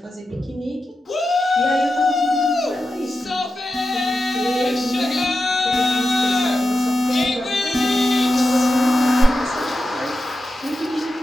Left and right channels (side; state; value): both; normal; correlation 0.90